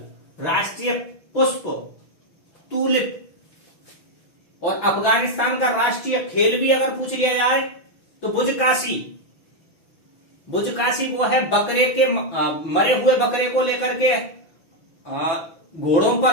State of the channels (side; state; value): right; late; 6.0 ms